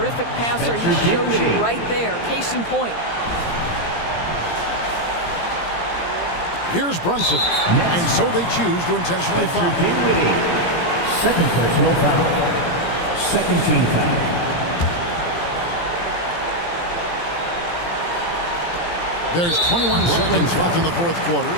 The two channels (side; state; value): right; late; 17 ms